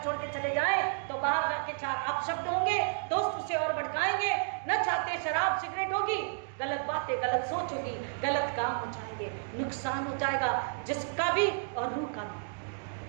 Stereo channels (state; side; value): silent; left; digital silence